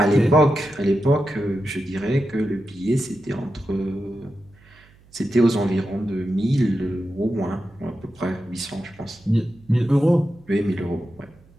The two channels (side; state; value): right; noise; hum, 28 dB below the sound